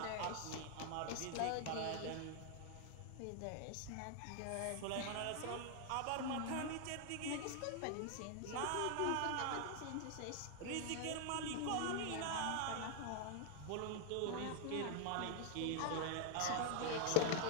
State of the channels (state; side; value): different; both; correlation 0.00